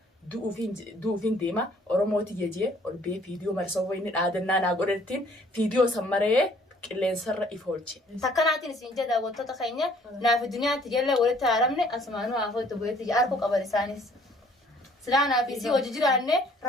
duufin deema Oromooti jejee ol bee fiidiyoo marsoo wayni dhaadannaa naa godhattiin fiidiyoo sammaree qilleensarra ifoolche. Takkanaatiin isin jedha wantoota keenya naaf duniyaatti jalla walitti haaramne asmaanuu afoo itti bu'eetti arku qaban isaanis. Silaa naaf isii hojii jiraanne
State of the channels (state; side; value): normal; both; correlation 0.59